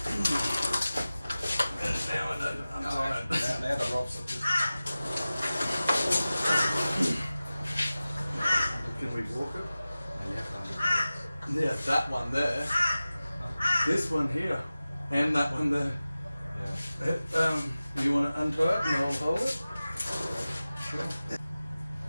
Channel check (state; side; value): inverted; both; correlation -0.96